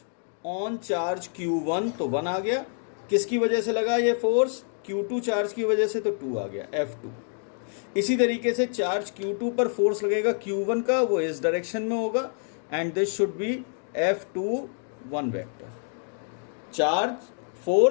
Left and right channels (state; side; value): silent; right; 60 dB below the other